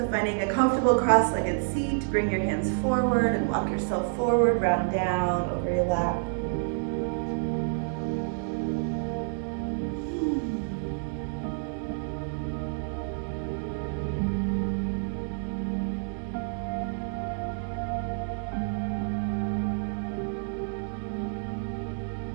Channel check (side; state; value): left; silent; 59 dB below the other